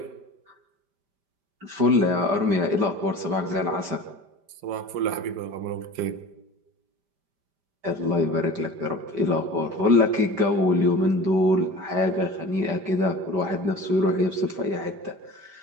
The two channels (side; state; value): left; late; 5.1 ms